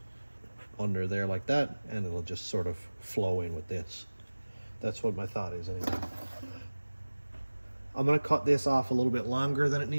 under there like that and it'll just sort of flow in with this. That's what my thought is anyway. I'm going to cut this off a little bit longer than it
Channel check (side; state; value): both; inverted; correlation -1.00